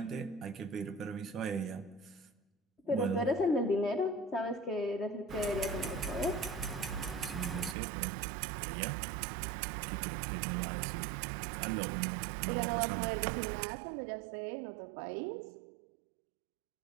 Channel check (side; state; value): left; drops out; at 7.8 s